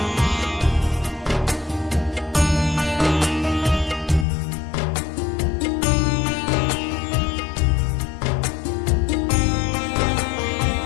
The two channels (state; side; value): drops out; right; at 4.2 s